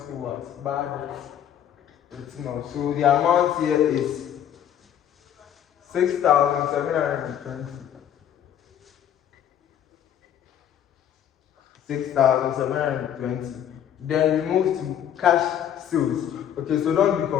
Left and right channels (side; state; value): right; quieter; 10.0 dB